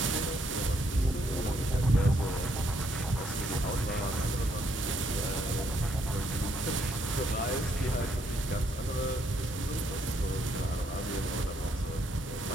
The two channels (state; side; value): normal; both; correlation 0.72